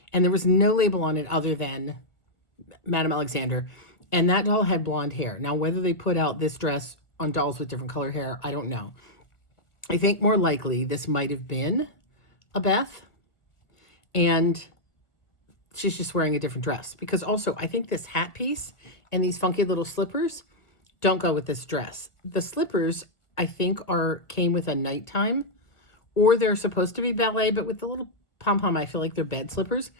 and there was no label on it other than Madame Alexander, and that doll had blonde hair. Now, whether they put out this dress on dolls with different color hair, I don't know. I think more likely this might have been a Beth, and she's just wearing a different dress, because also I think this hat piece and these funky little slippers don't go with this dress. The slippers, I think, came with a nighttime, or they're supposed to be ballet, but with the little pom-pom, I feel like they're bed slippers.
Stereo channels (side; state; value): right; late; 1.3 ms